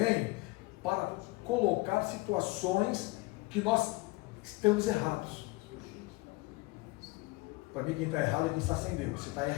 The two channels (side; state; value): right; quieter; 23.3 dB